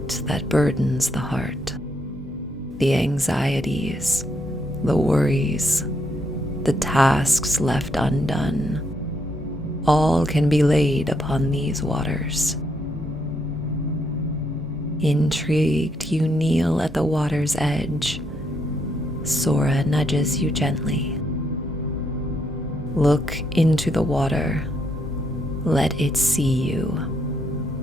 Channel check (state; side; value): noise; right; hum, 23 dB below the sound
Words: that burdens the heart, the anxieties, the worries, the tasks left undone. All can be laid upon these waters. Intrigued, you kneel at the water's edge. Sora nudges you gently. Look into the water. Let it see you.